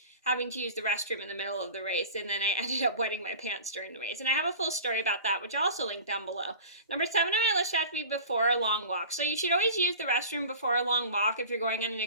having to use the restroom in the middle of the race. And then I ended up wetting my pants during the race. And I have a full story about that, which I'll also link down below. Number 7 on my list should have to be before a long walk. So you should always use the restroom before a long walk if you're going on an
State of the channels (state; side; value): inverted; both; correlation -0.38